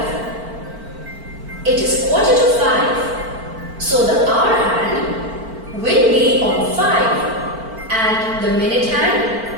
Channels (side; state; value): left; late; 4.4 ms